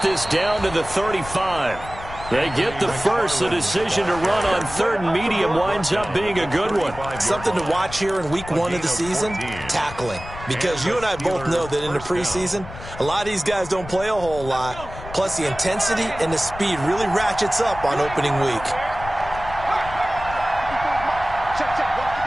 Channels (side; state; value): left; noise; rumble, 13 dB below the sound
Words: this down to the 35. They get the first. The decision to run on 3rd and medium winds up being a good one. Something to watch here in week 1 of the season, tackling. Because you and I both know that in the preseason, a lot of these guys don't play a whole lot. Plus, the intensity and the speed really ratchets up on opening week.